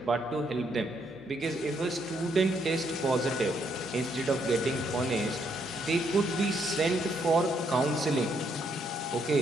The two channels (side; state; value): both; normal; correlation 0.73